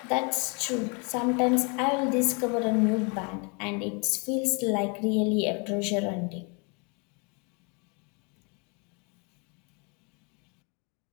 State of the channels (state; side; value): quieter; right; 33.4 dB